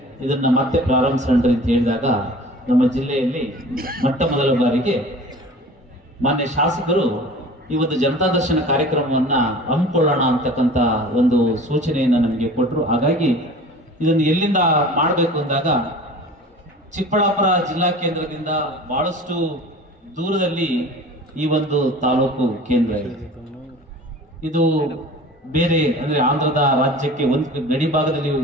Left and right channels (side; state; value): both; normal; correlation 0.41